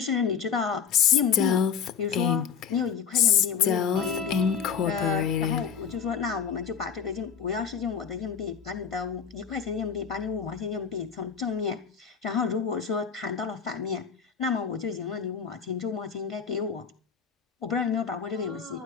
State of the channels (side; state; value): right; quieter; 7.0 dB